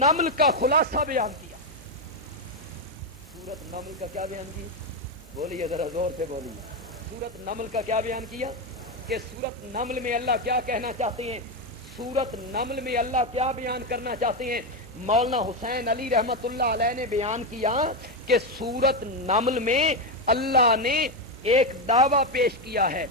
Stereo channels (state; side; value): normal; both; correlation 0.08